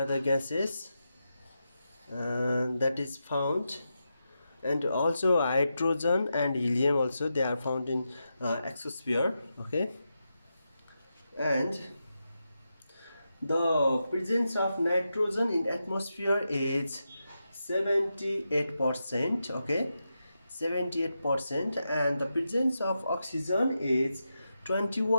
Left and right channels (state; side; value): inverted; both; correlation -0.88